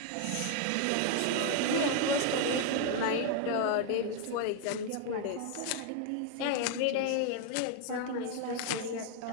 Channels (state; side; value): different; both; correlation 0.01